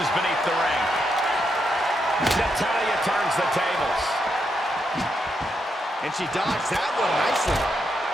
beneath the ring. Natalia turns the tables. And she dodged that one nicely.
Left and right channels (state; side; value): normal; both; correlation 0.81